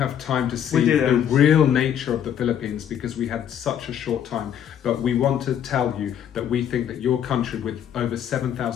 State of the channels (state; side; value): quieter; right; 9.5 dB